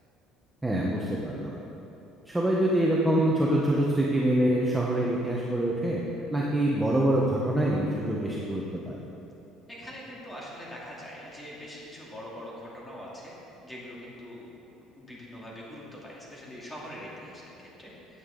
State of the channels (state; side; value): normal; both; correlation 0.73